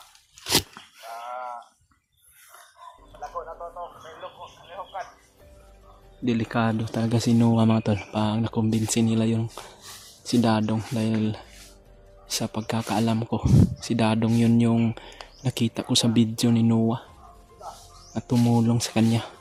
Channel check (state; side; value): identical; both; correlation 1.00